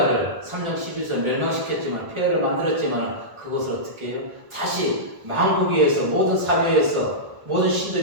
3장 11절 멸망시켰지만 폐허를 만들었지만 그것을 어떻게 해요? 다시 만국에서 모든 사회에서 모든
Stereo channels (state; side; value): late; left; 1.4 ms